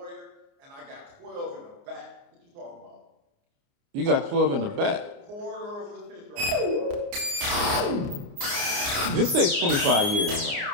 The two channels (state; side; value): late; left; 29 ms